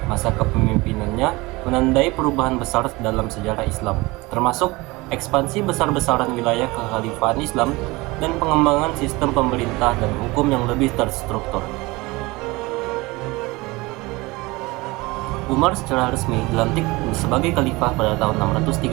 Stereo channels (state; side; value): quieter; left; 22.7 dB